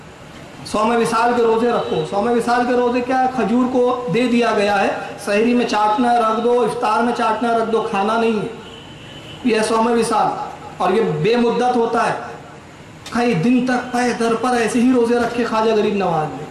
100 विसाल के रोज़े रखो। 100 विसाल के रोज़े क्या है? खजूर को दे दिया गया है, सहरी में चाटना रख दो, इफ्तार में चाटना रख दो, खाना नहीं है। यह 100 विसाल और ये बेमुद्दत होता है। कई दिन तक पाए दर पर ऐसे ही रोज़े रखे ख्वाजा गरीब नवाज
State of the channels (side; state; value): both; identical; correlation 1.00